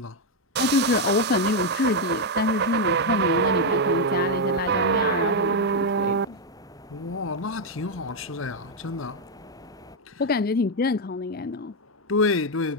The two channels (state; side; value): normal; both; correlation 0.01